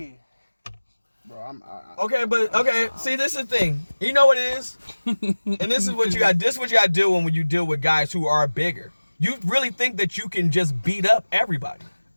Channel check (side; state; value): both; inverted; correlation -1.00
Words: Bro, Okay, see, this is the thing. You know what it is? And this is what you got. This is what you got to deal when you deal with guys who are bigger. You really think that you can just beat up everybody.